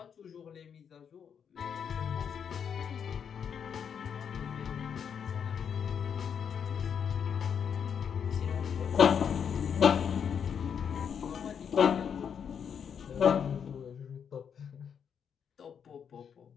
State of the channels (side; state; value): right; quieter; 7.5 dB